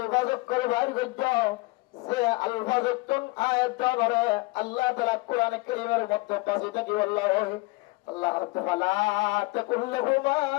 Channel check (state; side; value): quieter; right; 23.8 dB